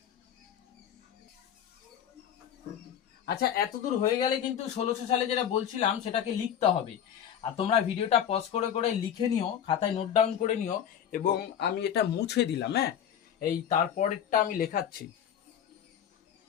আচ্ছা এতদূর হয়ে গেলে কিন্তু 1600 সালে যেটা বলছিলাম সেটাকে লিখতে হবে। আর তোমরা ভিডিওটা পজ করে করে লিখে নিও, খাতায় নোট ডাউন করে নিও, এবং আমি এটা মুছে দিলাম। হ্যাঁ, এই তারপরেরটা আমি লেখাচ্ছি।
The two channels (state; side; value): quieter; right; 9.3 dB